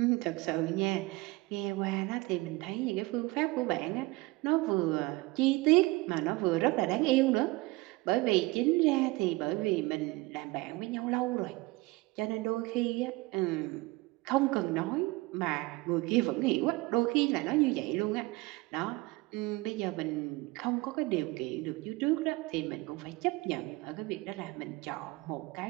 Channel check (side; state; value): left; quieter; 22.5 dB